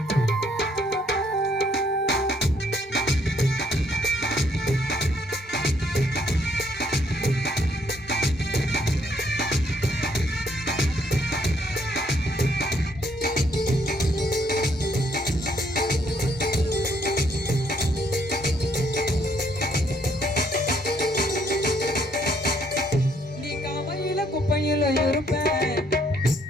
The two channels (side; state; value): both; normal; correlation 0.69